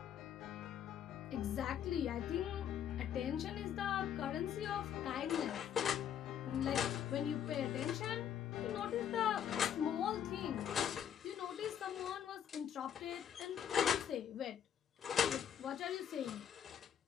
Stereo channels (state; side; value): quieter; right; 9.3 dB